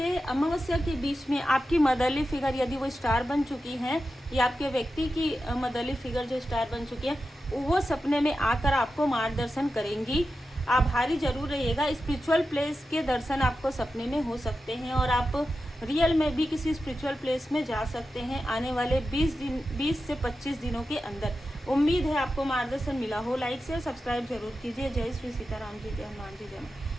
अमावस्या के बीच में आपकी मदरली फिगर यदि वो स्टार बन चुकी हैं, या आपके व्यक्ति की मदरली फिगर जो स्टार बन चुकी है, वो सपने में आकर आपको मार्गदर्शन करेंगी। आभारी जरूर रहिएगा। स्पिरिचुअल प्लेस के दर्शन आपको सपने में हो सकते हैं और आप रियल में भी किसी स्पिरिचुअल प्लेस में जा सकते हैं आने वाले 20 से 25 दिनों के अंदर। उम्मीद है आपको मार्गदर्शन मिला हो। लाइक शेयर सब्सक्राइब जरूर कीजिए। जय श्री सीताराम जी, जय हनुमान जी,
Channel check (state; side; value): normal; both; correlation 0.91